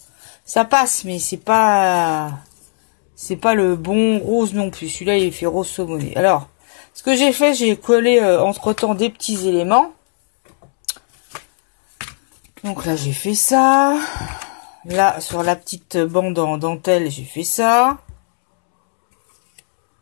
ça passe, mais c'est pas le bon rose non plus. Celui-là, il fait rose saumoné. Alors, Ce que j'ai fait, j'ai collé entre-temps des petits éléments. Donc là, j'ai fait ça. Là, sur la petite bande en dentelle, j'ai fait ça.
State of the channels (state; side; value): silent; right; 68 dB below the other